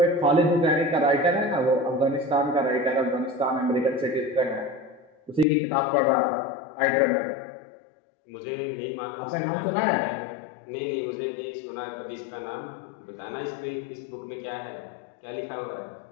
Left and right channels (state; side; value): drops out; right; at 5.5 s